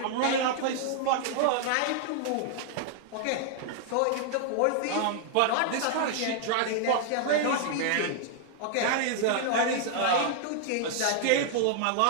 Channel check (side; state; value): both; different; correlation -0.01